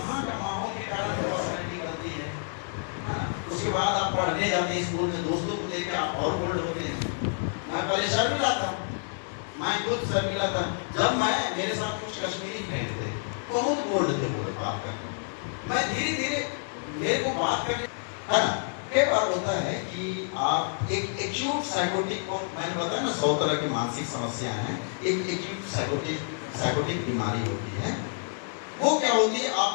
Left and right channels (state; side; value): silent; right; 59 dB below the other